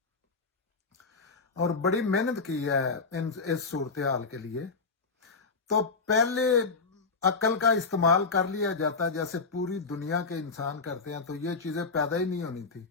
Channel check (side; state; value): right; quieter; 4.4 dB